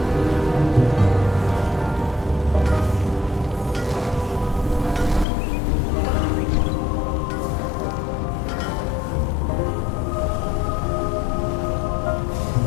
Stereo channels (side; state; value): right; drops out; at 5.2 s